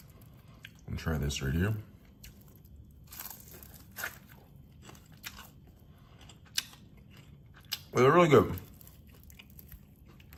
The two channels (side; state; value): both; identical; correlation 1.00